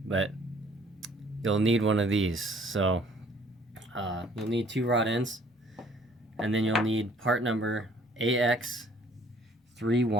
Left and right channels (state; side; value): normal; both; correlation 0.59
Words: But you'll need one of these. So you'll need 2 rod ends, and then you'll need part number